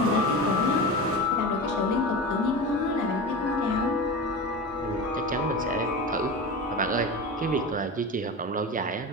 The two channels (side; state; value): both; normal; correlation 0.27